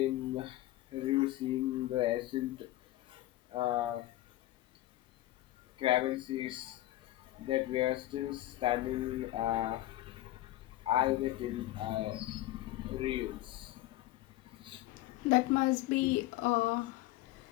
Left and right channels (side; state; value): right; quieter; 16.0 dB